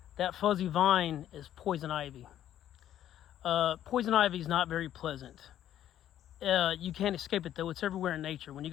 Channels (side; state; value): right; quieter; 11.4 dB